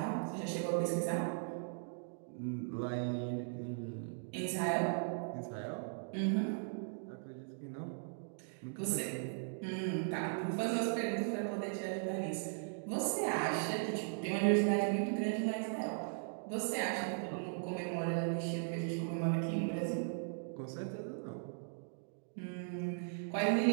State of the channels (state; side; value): silent; left; digital silence